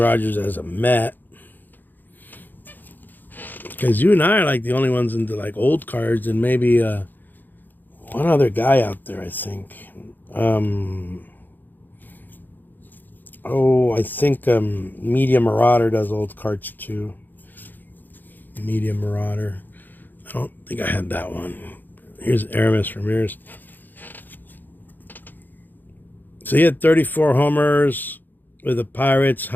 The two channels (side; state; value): right; late; 0.088 ms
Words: as a Met. Because you and I are like the only ones into like old cards, and maybe one other guy out there, I think. I think Media Marauder does old cards too. Media Marauder. I don't think I had that one. Here's Aramis Ramirez. So he had 34 homers with the Pirates,